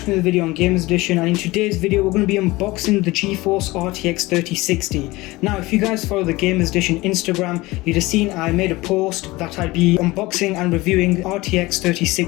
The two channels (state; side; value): quieter; right; 20.6 dB